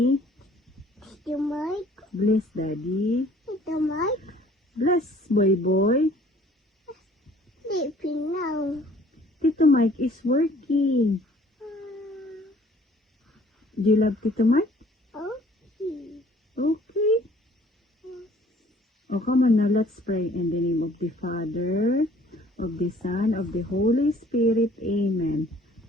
Bless Daddy. Bless Boy Boy. Tito Mike is working. Do you love Tito Mike? Okay. Oh, come on now, let's pray in the name of the Father, of the Son, of the Holy Spirit. Amen.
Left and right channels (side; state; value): both; normal; correlation 0.55